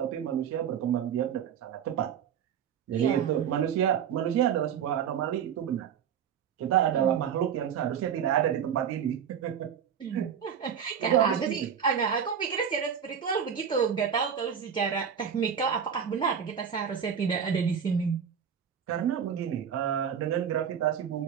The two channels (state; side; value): quieter; left; 8.0 dB